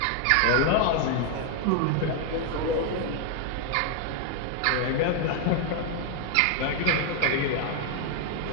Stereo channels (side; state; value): both; different; correlation 0.00